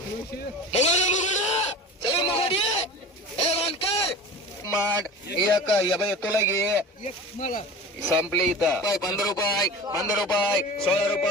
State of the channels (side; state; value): both; normal; correlation 0.35